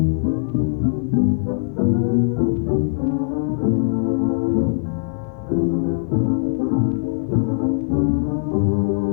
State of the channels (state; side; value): silent; right; 65 dB below the other